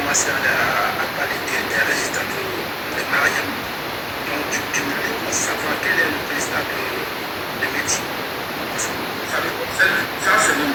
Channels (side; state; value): both; identical; correlation 1.00